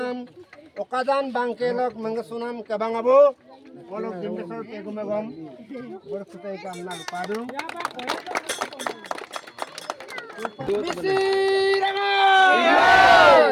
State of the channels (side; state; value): both; identical; correlation 1.00